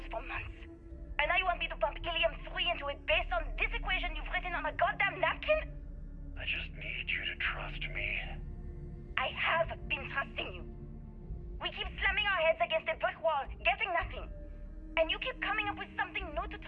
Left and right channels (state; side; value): identical; both; correlation 1.00